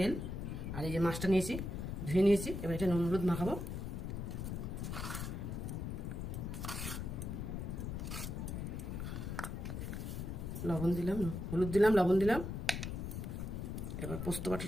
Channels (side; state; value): left; noise; rumble, 4 dB below the sound